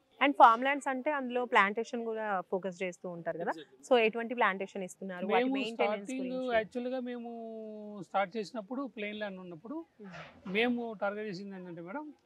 అండ్ ఫార్మ్ ల్యాండ్స్ అంటే అందులో ప్లాంటేషన్ కూడా ఫోకస్ చేస్తూ ఉంటారు కదా, సో ఎటువంటి ప్లాంటేషన్ ఇస్తున్నారు? మేము స్టార్టింగ్ యాక్చువల్గా మేము స్టార్ట్ చేసినప్పుడు ప్లెయిన్ ల్యాండ్ ఉన్నప్పుడు మేము టార్గెట్ చేసింది ఏంటంటే మేడం,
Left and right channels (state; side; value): identical; both; correlation 1.00